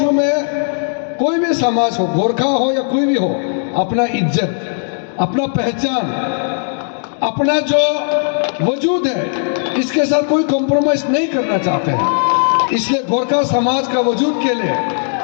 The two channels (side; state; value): right; silent; digital silence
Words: में कोई भी समाज हो, गोरखा हो या कोई भी हो, अपना इज्जत, अपना पहचान, अपना जो वजूद है, इसके साथ कोई कॉम्प्रोमाइज नहीं करना चाहते हैं। इसलिए गोरखा समाज का वजूद के लिए,